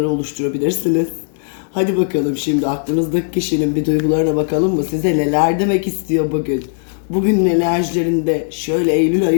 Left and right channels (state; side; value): silent; right; digital silence